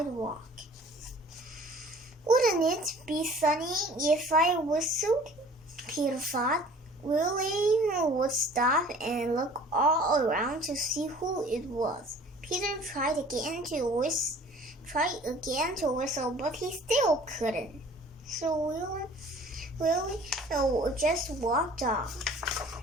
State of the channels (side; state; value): both; normal; correlation 0.49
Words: Wouldn't it be funny if I whistled? Peter thought. Willie would stop and look all around to see who it was. Peter tried again to whistle, but he still couldn't. So Willie just walked off.